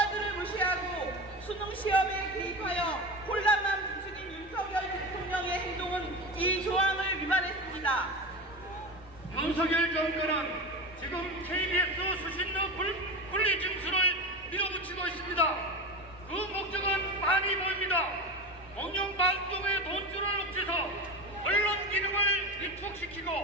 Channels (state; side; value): normal; both; correlation 0.25